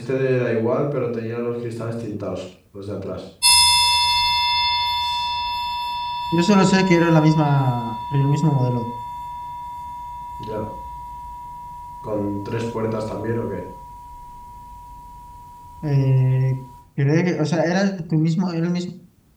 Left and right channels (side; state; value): both; identical; correlation 1.00